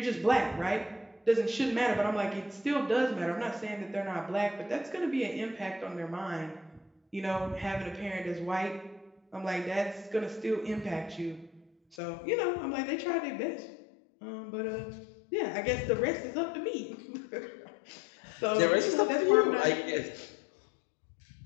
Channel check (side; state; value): right; drops out; at 12.0 s